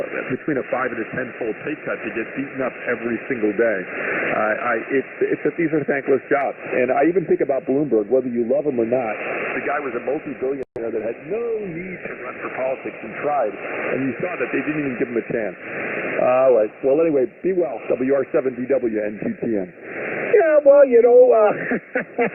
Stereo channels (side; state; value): both; identical; correlation 1.00